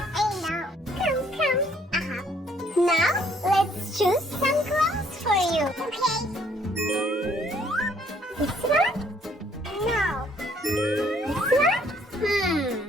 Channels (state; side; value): normal; both; correlation 0.64